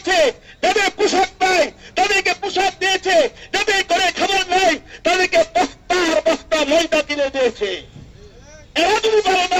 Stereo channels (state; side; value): identical; both; correlation 1.00